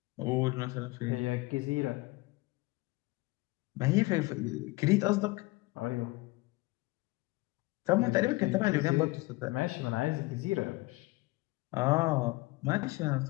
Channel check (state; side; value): quieter; right; 22.7 dB